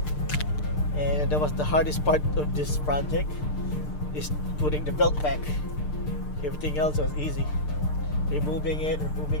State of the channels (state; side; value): late; right; 6.7 ms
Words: and that was the hardest part of this project, is putting the belt back. Everything else was easy. Removing